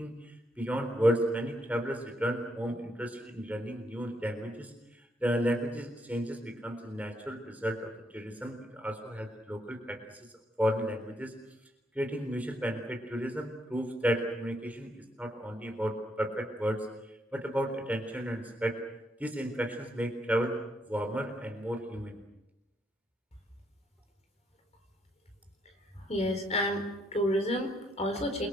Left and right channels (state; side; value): normal; both; correlation 0.75